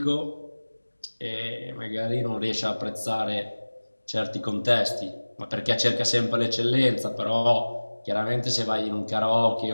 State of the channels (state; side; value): inverted; both; correlation -1.00